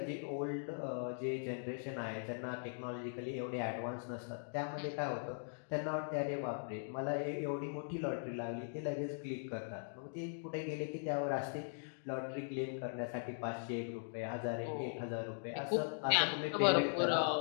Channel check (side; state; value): right; silent; digital silence